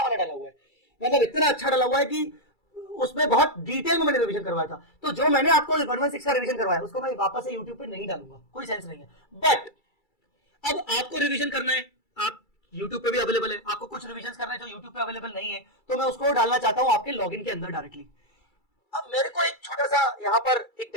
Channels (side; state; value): right; late; 2.3 ms